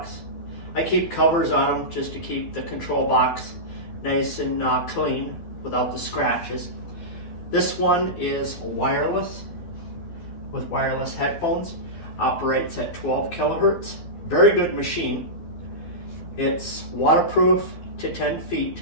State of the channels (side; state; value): right; late; 12 ms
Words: I keep covers on them just to keep the control box nice and clean without the scratches. This one is wireless with wireless headphones. Operates at 12 kilohertz. Very good machine. It's waterproof to 10 feet.